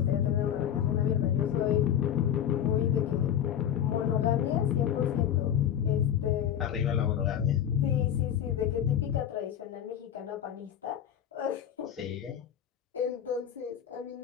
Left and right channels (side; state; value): right; quieter; 10.1 dB